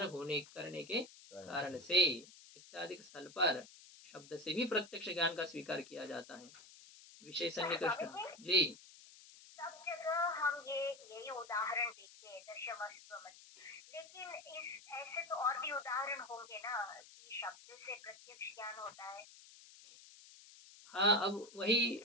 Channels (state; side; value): noise; left; hiss, 19 dB below the sound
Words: होने करने के कारण से इत्यादि स्थल पर शब्द से भी प्रत्यक्ष ज्ञान का स्वीकार किया जाता है। विषय सन्निकृष्ट जी। सब जगह हम यही उदाहरण देखते हैं दशमस्तमसी, लेकिन इस ऐसे तो और भी उदाहरण होंगे ना कि शब्द से प्रत्यक्ष ज्ञान होता है। हाँ, अब वही